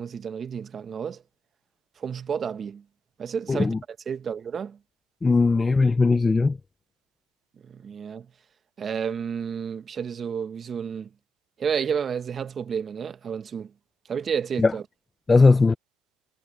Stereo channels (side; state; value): both; normal; correlation 0.90